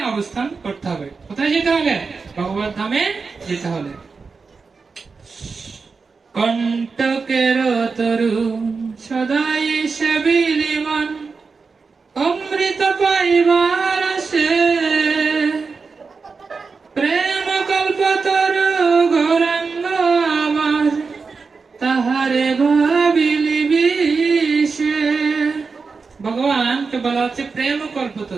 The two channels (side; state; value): left; quieter; 4.7 dB